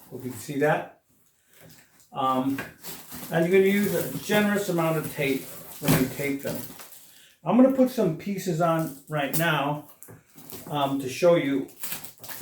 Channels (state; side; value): identical; both; correlation 1.00